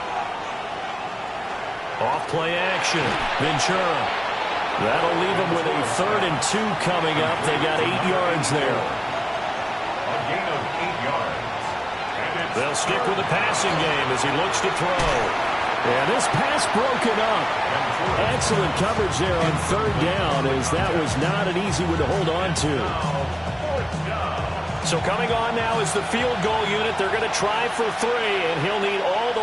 Off play action. Ventura. That'll leave him with a 3rd and 2 coming up. They got 8 yards there. A gain of 8 yards. They'll stick with the passing game as he looks to throw. And this pass broken up. Excellent coverage there on 3rd down, as that was not an easy one to hold on to. So coming on now is the field goal unit. They're going to try for 3, and he'll need all the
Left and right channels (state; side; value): identical; both; correlation 1.00